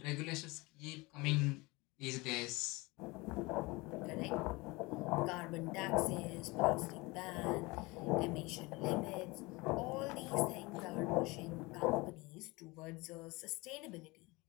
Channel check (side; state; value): right; quieter; 23.9 dB